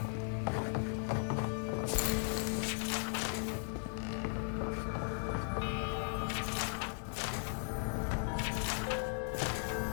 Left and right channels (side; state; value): right; silent; 53 dB below the other